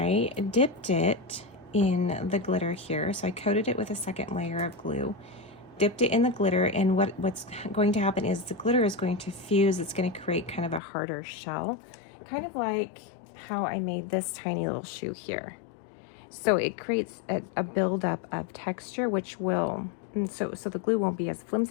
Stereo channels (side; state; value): right; drops out; at 10.8 s